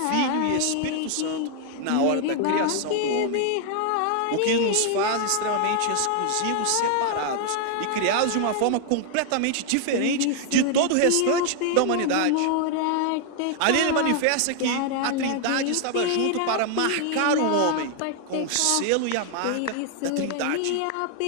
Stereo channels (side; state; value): both; different; correlation 0.00